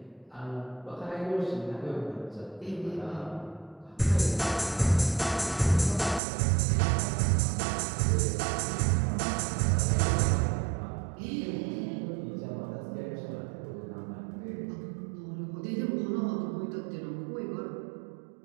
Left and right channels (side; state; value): left; drops out; at 6.2 s